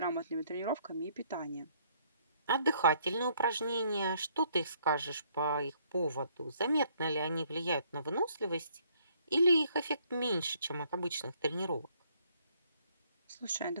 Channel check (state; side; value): inverted; both; correlation -0.66